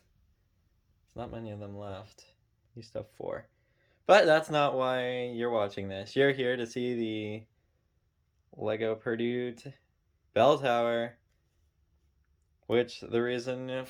not many of them left. Used to have 4. But that's not why you're watching this. You're here to see the Lego Purdue bell tower, which the reason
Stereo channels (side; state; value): both; identical; correlation 1.00